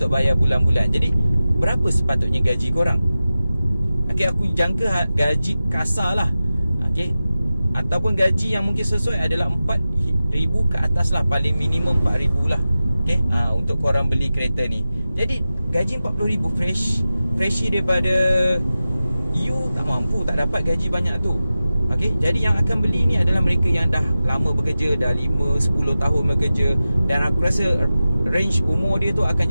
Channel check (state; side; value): inverted; both; correlation -0.94